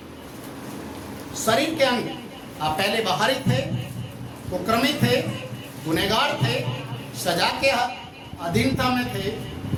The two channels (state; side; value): identical; both; correlation 1.00